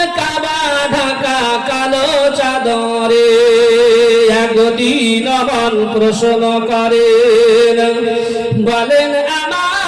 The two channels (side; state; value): both; identical; correlation 1.00